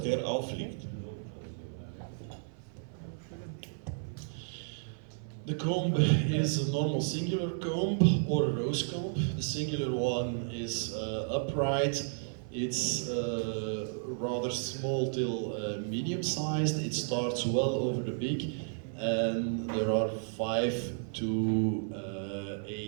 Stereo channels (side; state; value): left; silent; 56 dB below the other